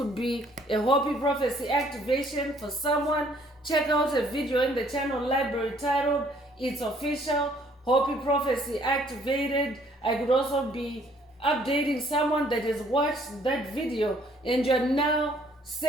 be a Hopi prophecy activation for someone. Check out a video in the channel library titled It's Official, Hopi Prophecy Activated. I could also be updating someone that has watched that video and you're now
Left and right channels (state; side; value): normal; both; correlation 0.62